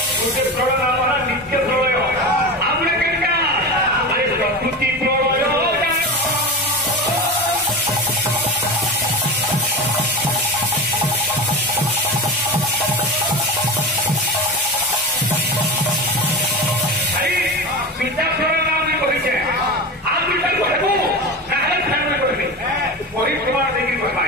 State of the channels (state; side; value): normal; both; correlation 0.25